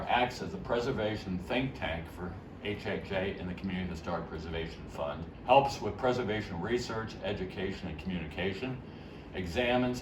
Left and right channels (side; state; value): both; identical; correlation 1.00